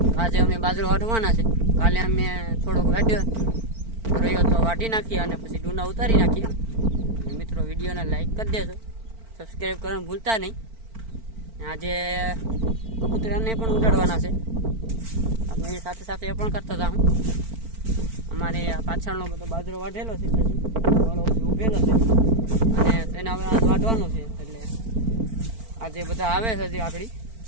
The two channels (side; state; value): left; late; 4.4 ms